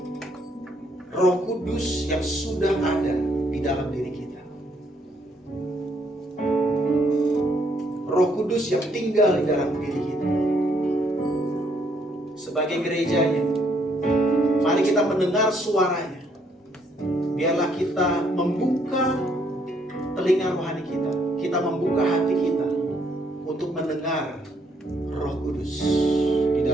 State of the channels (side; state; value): both; normal; correlation 0.70